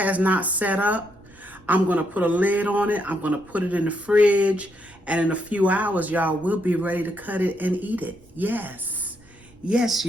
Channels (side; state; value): right; noise; rumble, 27 dB below the sound